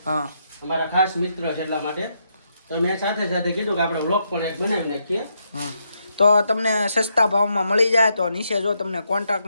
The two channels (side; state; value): both; inverted; correlation -0.79